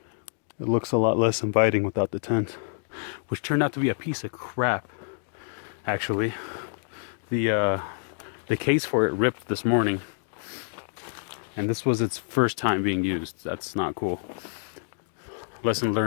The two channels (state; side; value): silent; right; digital silence